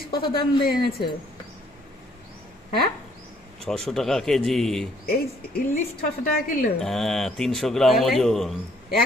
কত দাম দিয়ে এনেছো? হ্যাঁ, 600 টাকা কেজি। এই ইলিশ 600 টাকা কিলো? হ্যাঁ, 300 গ্রাম ওজন।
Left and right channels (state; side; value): normal; both; correlation 0.64